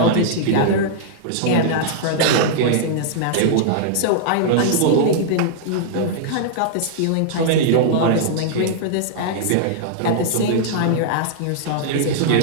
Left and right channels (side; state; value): both; different; correlation -0.02